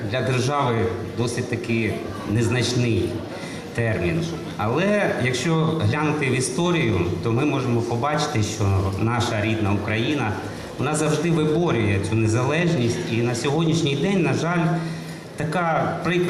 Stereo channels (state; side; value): identical; both; correlation 1.00